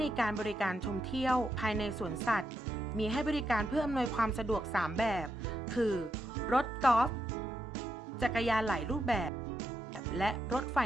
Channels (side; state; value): both; normal; correlation 0.82